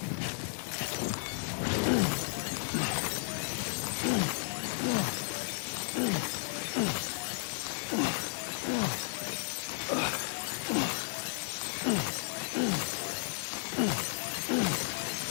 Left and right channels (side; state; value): right; silent; digital silence